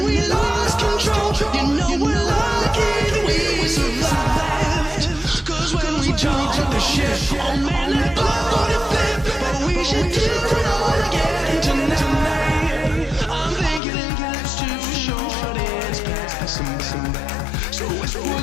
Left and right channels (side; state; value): right; drops out; at 13.8 s